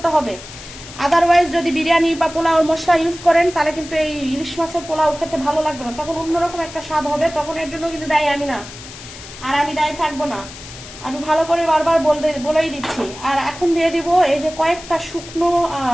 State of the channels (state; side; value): noise; left; hiss, 15 dB below the sound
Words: হবে। আদারওয়াইজ যদি বিরিয়ানি বা পোলাও মশলা ইউজ করেন তাহলে কিন্তু এই ইলিশ মাছের পোলাও খেতে ভালো লাগবে না, তখন অন্যরকম একটা স্বাদ হবে। তখন এর জন্য কিন্তু দায়ী আমি না, আর আমি দায়ী থাকবো না, আমি ভালো করে বারবার বলেই দিচ্ছি। আর এখন দিয়ে দিব এই যে কয়েকটা